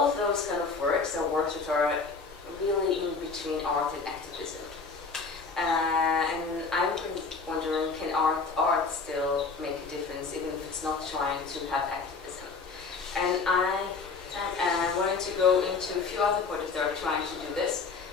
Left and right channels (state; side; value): quieter; right; 4.6 dB